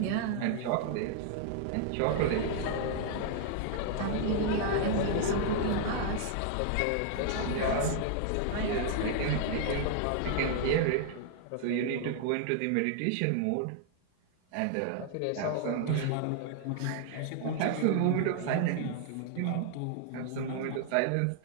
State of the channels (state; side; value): different; both; correlation -0.01